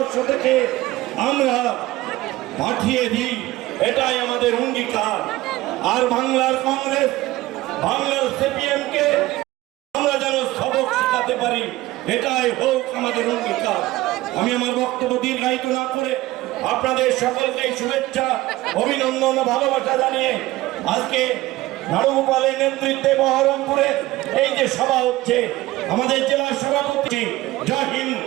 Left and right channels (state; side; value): quieter; left; 17.8 dB